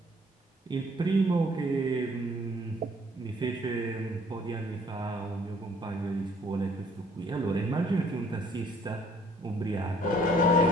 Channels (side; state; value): both; normal; correlation 0.60